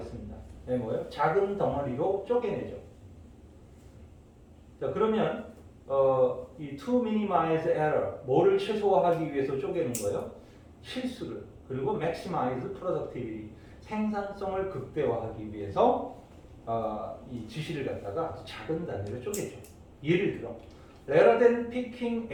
네, 뭐예요? 작은 덩어리로 쪼개내죠. 자 그러면 이 to minimize error, 뭐를 최소화하기 위해서 쪼개는 거예요? 실수를. 그리고 maximize productivity, 생산성을 극대화하기 위해서 이 지시를 갖다가 아주 작은 단위로 쪼개죠. 예를 들어 rather than picking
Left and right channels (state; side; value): identical; both; correlation 1.00